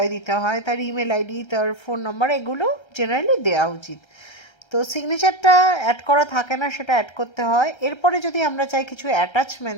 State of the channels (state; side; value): late; right; 1.3 ms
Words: দিতে হয়, তার ইমেল আইডি, তার ফোন নাম্বার, এগুলো জেনারেলি দেওয়া উচিত। তো সিগনেচারটা অ্যাড করা থাকে না, সেটা অ্যাড করতে হয়। এরপরে যদি আমরা চাই কিছু